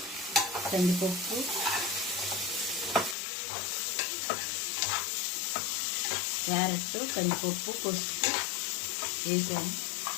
కందిపప్పు, క్యారెట్, కందిపప్పు, పసుపు వేసాను.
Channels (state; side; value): drops out; right; at 3.2 s